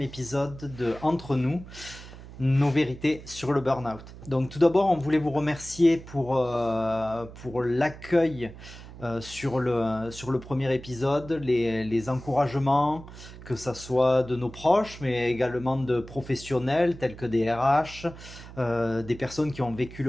épisode de Entre nous, nos vérités sur le burn-out. Donc tout d'abord, on voulait vous remercier pour l'accueil sur le premier épisode, les encouragements, que ça soit de nos proches, mais également de professionnels tels que des RH, des personnes qui ont vécu le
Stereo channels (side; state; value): right; noise; hum, 16 dB below the sound